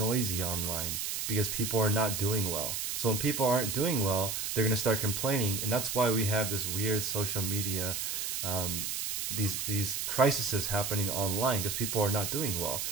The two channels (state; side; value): noise; right; hiss, 2 dB below the sound